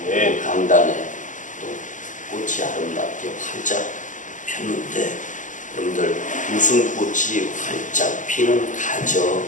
아멘. 강단에 또 꽃이 아름답게 활짝 폈는데 여러분들 웃음꽃이 활짝 피는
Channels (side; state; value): right; late; 0.37 ms